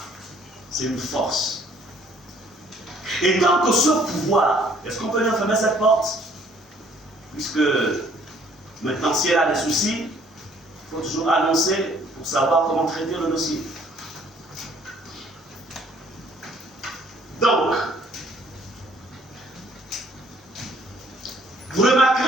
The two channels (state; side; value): normal; both; correlation 0.60